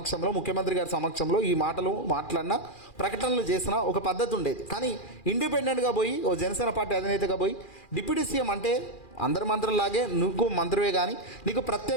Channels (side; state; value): right; late; 2.4 ms